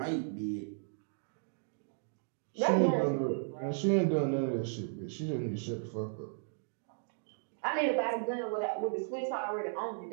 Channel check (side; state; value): left; silent; digital silence